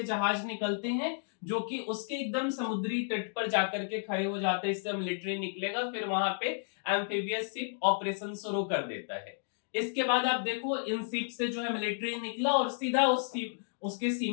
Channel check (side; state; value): right; silent; digital silence